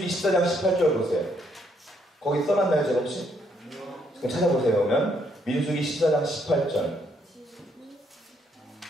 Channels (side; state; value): both; normal; correlation 0.72